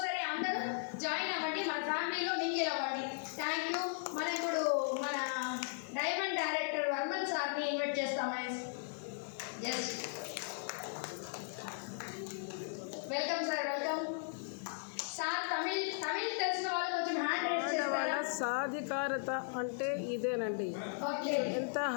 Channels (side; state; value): right; silent; 53 dB below the other